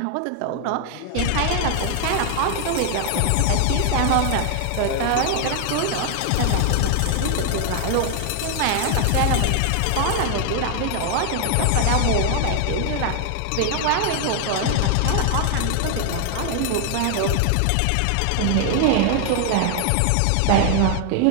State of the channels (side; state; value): both; different; correlation 0.00